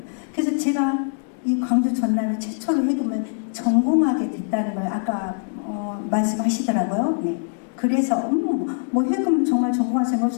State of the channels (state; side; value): silent; right; digital silence